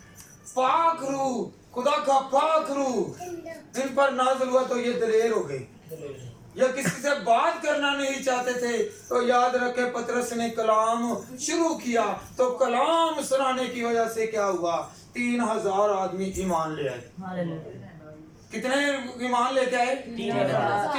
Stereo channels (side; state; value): both; identical; correlation 1.00